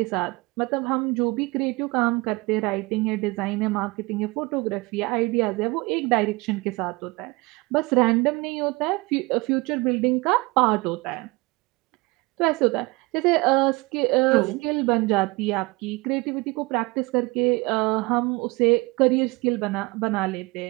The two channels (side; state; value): left; quieter; 24.4 dB